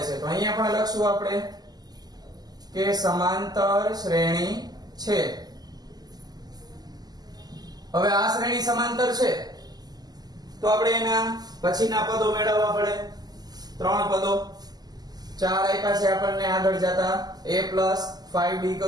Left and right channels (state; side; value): late; left; 0.20 ms